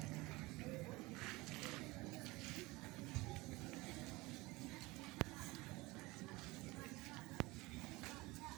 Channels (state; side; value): quieter; left; 22.0 dB